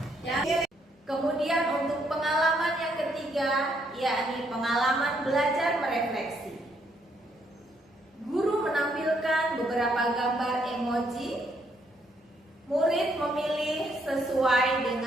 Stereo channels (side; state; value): both; normal; correlation 0.72